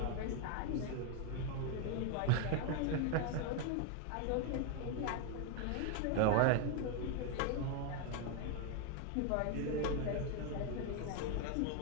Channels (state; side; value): different; both; correlation 0.01